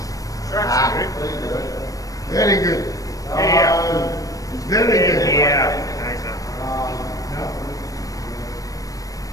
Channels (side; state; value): right; late; 0.17 ms